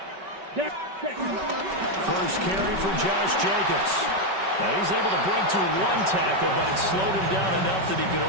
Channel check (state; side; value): late; left; 5.2 ms